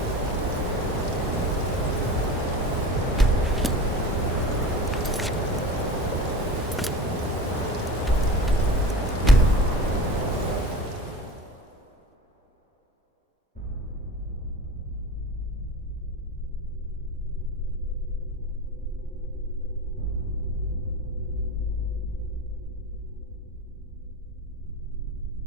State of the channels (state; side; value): normal; both; correlation 0.34